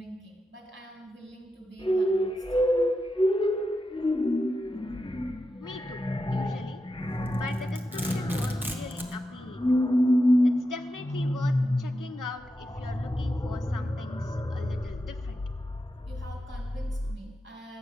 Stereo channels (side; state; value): both; normal; correlation 0.88